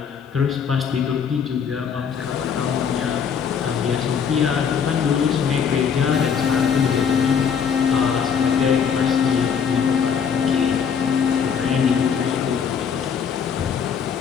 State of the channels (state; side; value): quieter; right; 7.0 dB